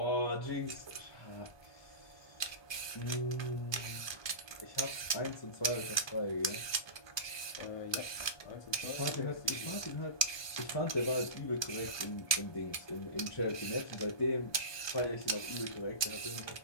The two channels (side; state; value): right; late; 1.2 ms